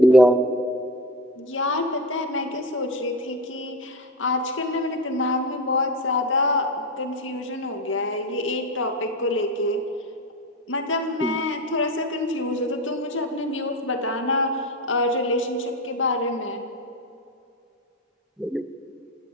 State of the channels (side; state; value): both; normal; correlation 0.22